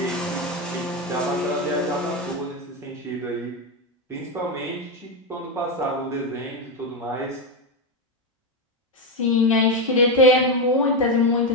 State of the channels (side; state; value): both; normal; correlation 0.09